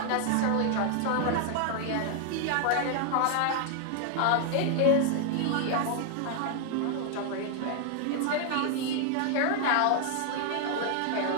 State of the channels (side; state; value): both; different; correlation 0.00